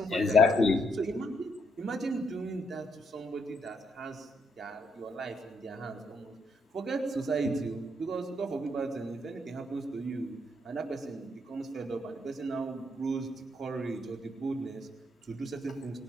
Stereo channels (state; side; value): normal; both; correlation 0.74